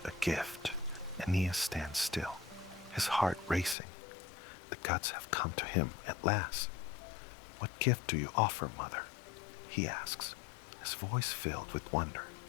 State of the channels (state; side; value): drops out; right; at 3.8 s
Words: a gift." Aeneas stands still, his heart racing. The gods have come to him at last. "What gift do you offer, mother?" he asks, his voice filled with wonder.